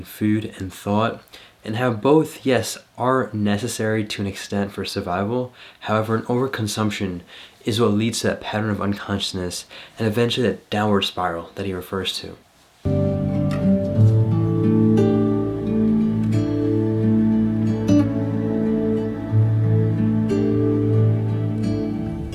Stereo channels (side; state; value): both; identical; correlation 1.00